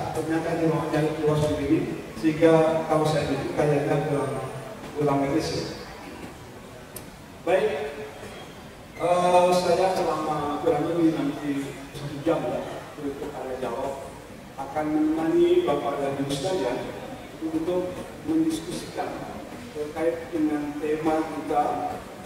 Ternyata di ruang luas begini, sehingga kalau saya itu kayaknya kurang medis. Baik, saya selama kurang lebih nanti 1 jam ya untuk tanya jawab akan menemani Bapak dan Ibu sekalian untuk mendiskusikan terkait dengan tema kita,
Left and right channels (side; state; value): both; identical; correlation 1.00